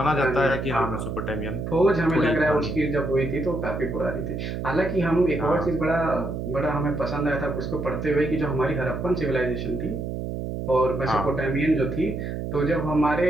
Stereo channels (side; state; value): right; noise; hum, 4 dB below the sound